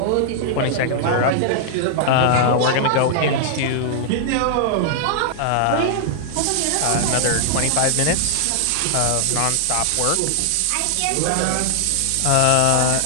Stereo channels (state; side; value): different; both; correlation -0.01